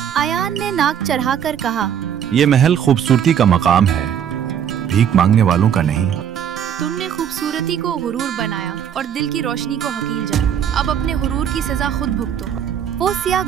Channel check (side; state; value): left; quieter; 8.9 dB